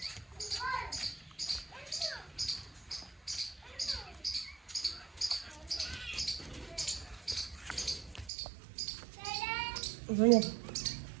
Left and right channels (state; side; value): drops out; left; at 8.3 s